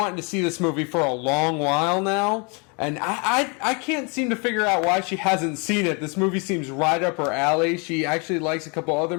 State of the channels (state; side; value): quieter; right; 33.4 dB